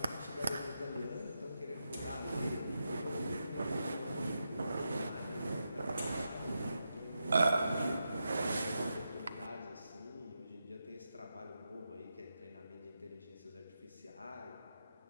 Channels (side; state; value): both; inverted; correlation -0.87